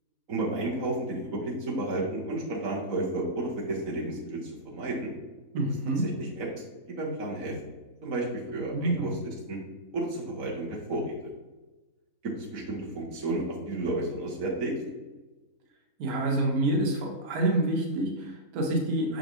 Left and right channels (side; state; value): left; late; 4.0 ms